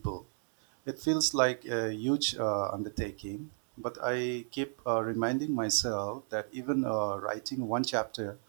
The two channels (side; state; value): left; silent; digital silence